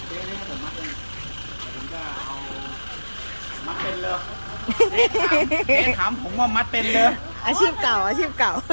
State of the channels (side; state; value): both; inverted; correlation -1.00